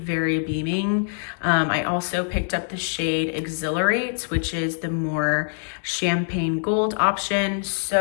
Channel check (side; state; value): right; silent; digital silence